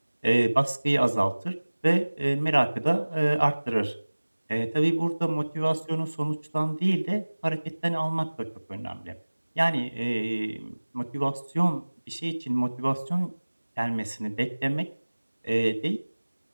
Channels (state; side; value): inverted; both; correlation -1.00